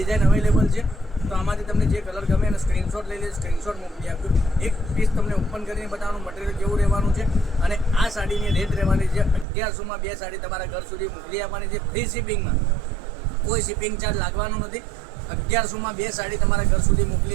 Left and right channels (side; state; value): left; drops out; at 9.5 s